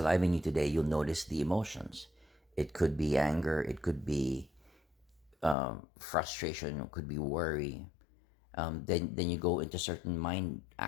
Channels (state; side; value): drops out; right; at 5.6 s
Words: in you today, you'll notice the emotions. It could be anger, it could be frustration, it could be worry. Then you go into certain mind